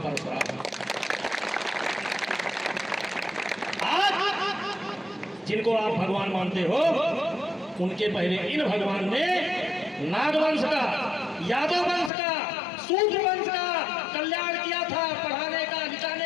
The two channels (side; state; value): right; drops out; at 12.1 s